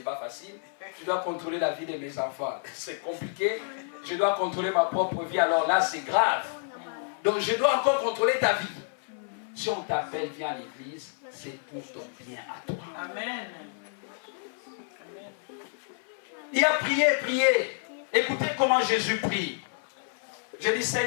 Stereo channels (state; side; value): silent; right; 58 dB below the other